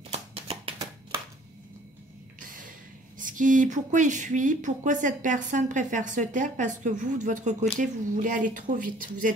Pourquoi il fuit? Pourquoi cette personne préfère se taire? Parce que vous, de votre côté, vous voulez aller trop vite. Vous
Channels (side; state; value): both; normal; correlation 0.55